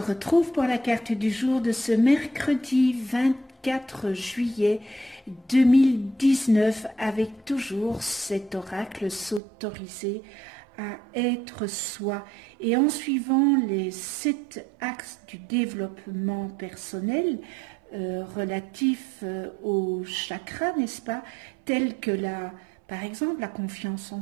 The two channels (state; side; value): drops out; left; at 9.4 s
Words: pour la carte du jour de ce mercredi 24 juillet 2019 avec toujours cet oracle s'autoriser à être soi et en suivant les 7 axes du développement personnel relatifs aux chakras, n'est-ce pas, tels que par exemple la confiance en